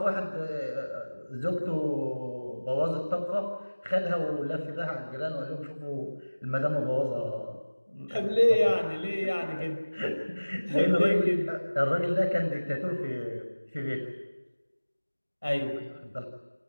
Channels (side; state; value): both; inverted; correlation -1.00